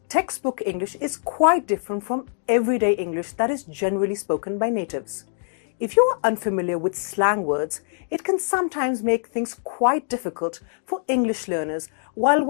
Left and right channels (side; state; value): right; silent; digital silence